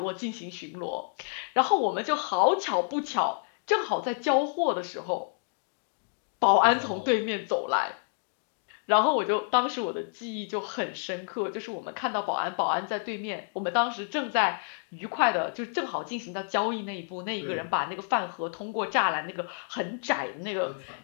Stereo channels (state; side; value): silent; right; digital silence